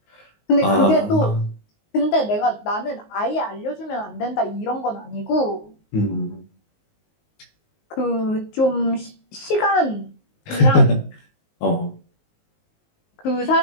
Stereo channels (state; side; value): late; right; 19 ms